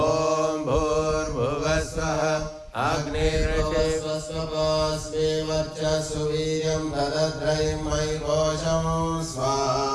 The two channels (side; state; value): both; identical; correlation 1.00